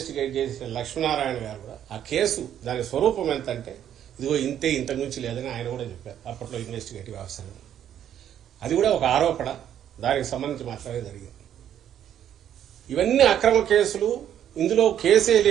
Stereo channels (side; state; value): left; quieter; 10.2 dB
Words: చేసిన లక్ష్మీనారాయణ గారు కూడా ఆ కేసు దాని స్వరూపం ఎంత అంటే ఇదిగో ఇంతే, ఇంతకు మించి లేదని ఆయన కూడా చెప్పారు అప్పట్లో ఇన్వెస్టిగేటివ్ ఆఫీసర్. అది కూడా ఒక ఆరోపణ, దానికి సంబంధించి మాత్రమే జరిగింది. ఇవన్నీ అక్రమ కేసులు. ఇందులో కేసే